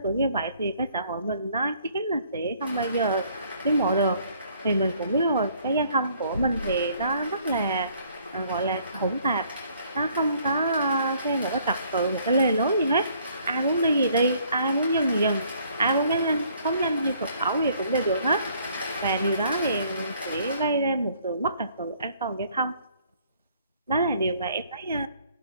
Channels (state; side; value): inverted; both; correlation -0.62